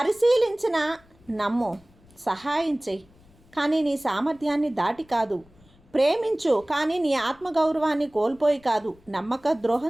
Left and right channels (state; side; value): noise; left; rumble, 28 dB below the sound